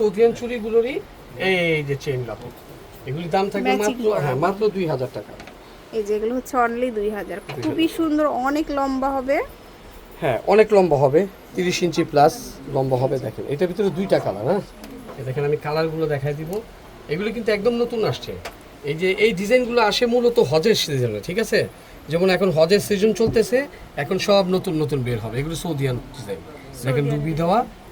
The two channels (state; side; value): identical; both; correlation 1.00